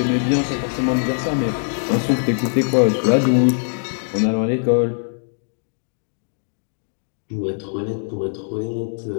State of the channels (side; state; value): right; silent; digital silence